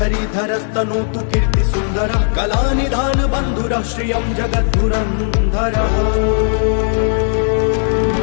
कीर्ति सुन्दरः कलानिधान बन्धुरः श्रियं जगद्धुरन्धरः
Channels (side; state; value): right; silent; digital silence